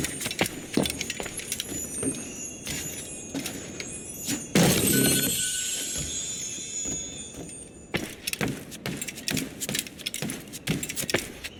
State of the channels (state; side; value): identical; both; correlation 1.00